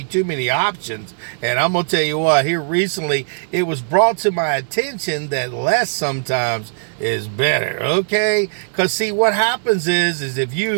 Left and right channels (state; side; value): silent; left; digital silence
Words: too many options. And I'm going to tell you what, here recently, it was brought to my attention that less sometimes is better. Okay. Because see, what happens is if